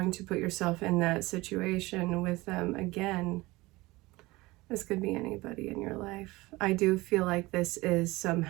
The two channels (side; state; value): left; quieter; 20.9 dB